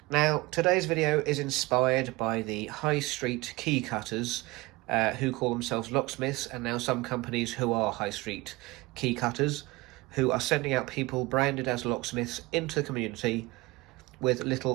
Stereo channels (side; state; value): left; quieter; 22.2 dB